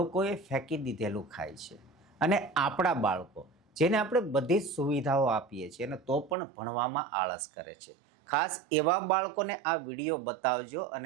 ફેંકી દીધેલું ખાય છે. અને આપણા બાળકો જેને આપણે બધી જ સુવિધાઓ આપીએ છીએ અને તો પણ ભણવામાં આળસ કરે છે. ખાસ એવા બાળકોને આ વિડીયો બતાવજો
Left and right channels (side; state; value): left; drops out; at 6.4 s